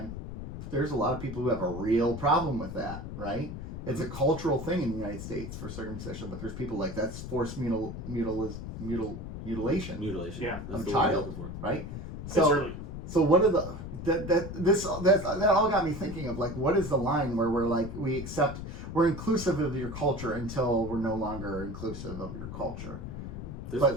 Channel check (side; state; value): left; noise; rumble, 8 dB below the sound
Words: There's a lot of people who have a real problem with that, right? It's a cultural thing in the United States for circumcision, but there's people like that's forced mutilation. Yeah, that's of the a word I'm child, looking for. right? So what are that all got me thinking of what is the line where we're inclusive of your culture until we're no longer inclusive of your culture?